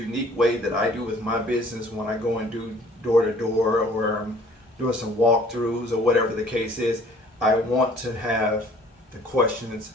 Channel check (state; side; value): normal; both; correlation 0.54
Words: way that I do with my business when I go and do door to door, or I'm doing some walkthroughs or whatever the case is. I want to have the questions